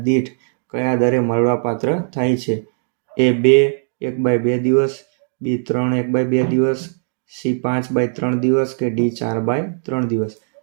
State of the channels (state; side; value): silent; left; digital silence